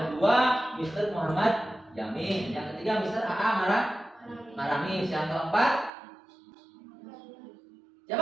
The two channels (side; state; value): left; drops out; at 5.9 s